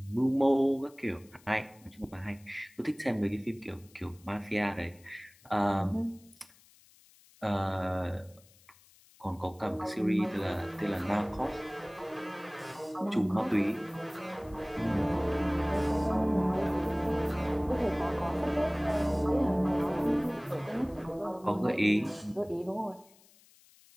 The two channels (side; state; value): left; noise; hiss, 27 dB below the sound